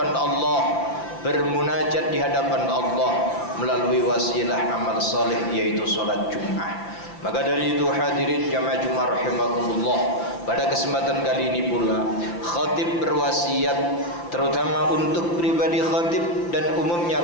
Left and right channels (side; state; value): right; late; 5.8 ms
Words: Allah, bermunajat di hadapan Allah melalui wasilah amal saleh, yaitu salat Jumat. Maka dari itu hadirin jamaah Jumat rahimakumullah, pada kesempatan kali ini pula khatib berwasiat terutama untuk pribadi khatib dan umumnya